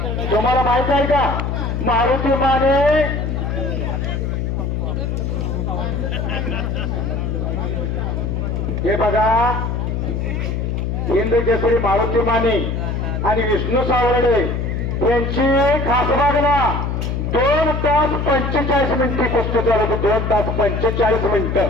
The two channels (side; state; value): left; noise; hum, 1 dB below the sound